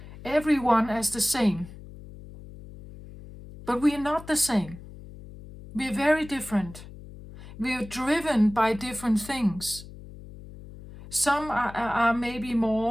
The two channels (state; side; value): noise; left; hum, 16 dB below the sound